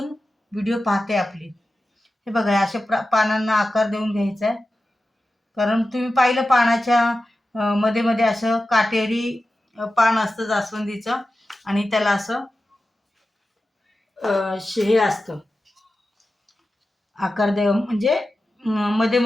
व्हिडिओ पाहते आपली. हे बघा, अशा पानांना आकार देऊन घ्यायचा आहे. कारण तुम्ही पाहिलं पानाच्या मध्ये मध्ये असं काटेरी पान असतं जास्वंदीचं, आणि त्याला असं हे असतं आकार देव, म्हणजे मध्ये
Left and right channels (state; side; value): normal; both; correlation 0.93